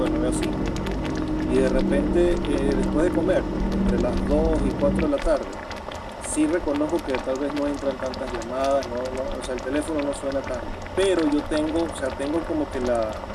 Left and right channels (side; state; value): both; identical; correlation 1.00